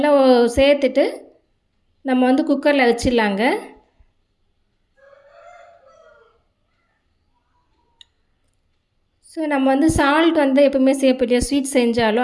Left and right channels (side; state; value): both; identical; correlation 1.00